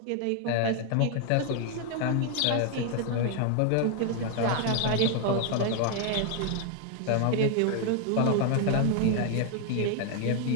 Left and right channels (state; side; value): different; both; correlation 0.00